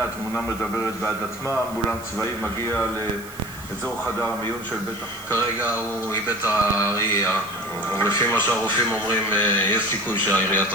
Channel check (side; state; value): right; noise; hiss, 19 dB below the sound